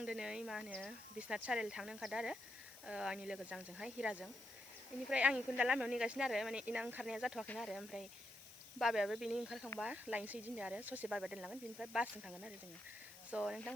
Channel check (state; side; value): noise; left; hiss, 17 dB below the sound